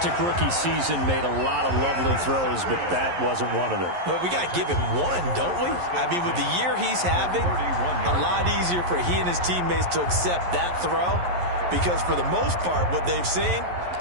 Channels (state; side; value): late; left; 11 ms